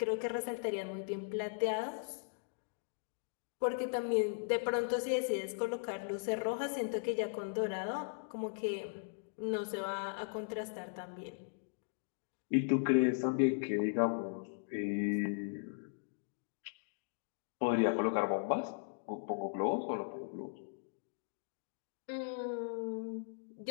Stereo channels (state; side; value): silent; right; digital silence